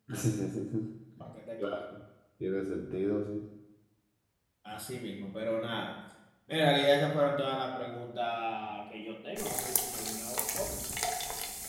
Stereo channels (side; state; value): both; identical; correlation 1.00